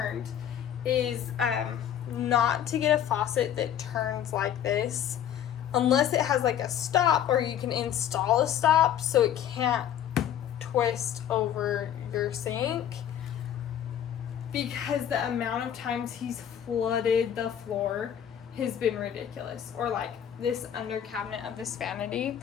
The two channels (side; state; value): right; quieter; 10.0 dB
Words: is not to get a faucet that turns like this unless it has like a stop, or you can install a stop so it can't twist over your sink, because the amount of times he's flooded the floor has been ridiculous. Or like this under cabinet of this vanity.